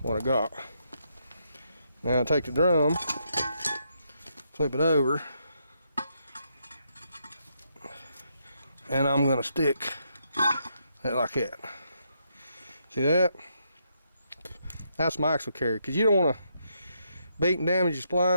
what I got. Now take the drum, flip it over, and I'm going to stick it like that. See that? That's my axle carrier, because you don't want to beat and damage your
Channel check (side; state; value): both; inverted; correlation -0.78